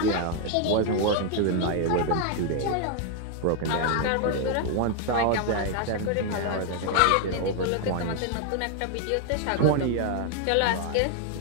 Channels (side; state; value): both; different; correlation 0.00